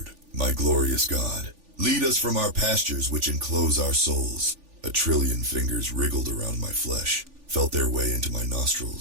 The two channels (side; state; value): left; late; 3.4 ms